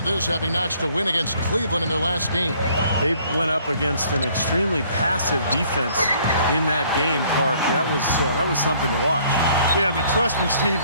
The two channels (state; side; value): inverted; both; correlation -0.61